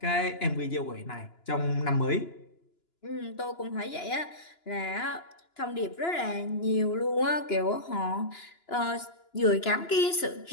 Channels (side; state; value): right; late; 2.9 ms